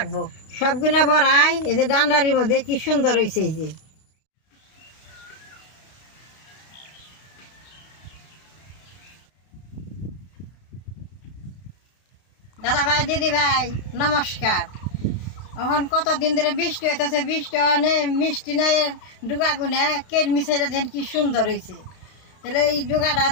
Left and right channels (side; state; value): right; late; 32 ms